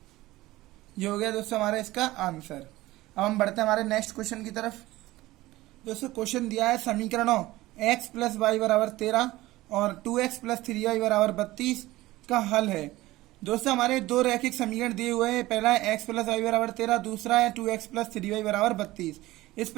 ये हो गया दोस्तों हमारा इसका आंसर। अब हम बढ़ते हैं हमारे नेक्स्ट क्वेश्चन की तरफ। दोस्तों क्वेश्चन दिया है समीकरणों x + y = 13 और 2x + 3y = 32 का हल है। दोस्तों हमारे दो रैखिक समीकरण दिए हुए हैं, पहला है x + y = 13, दूसरा है 2x + 3y = 32। इस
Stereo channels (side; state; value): left; quieter; 17.8 dB